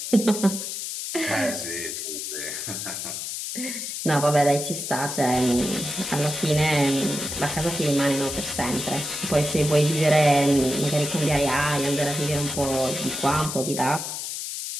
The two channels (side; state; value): left; noise; hiss, 5 dB below the sound